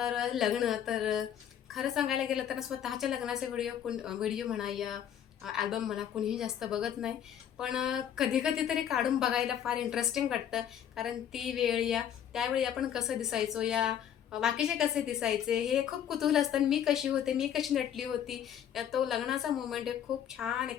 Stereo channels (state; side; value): quieter; right; 9.5 dB